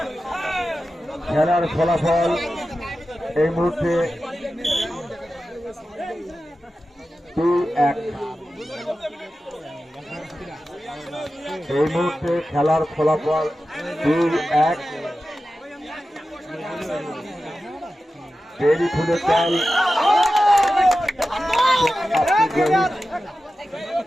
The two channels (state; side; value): normal; both; correlation 0.93